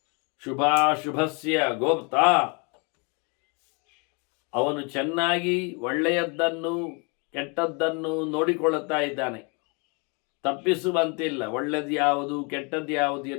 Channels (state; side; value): quieter; right; 32.9 dB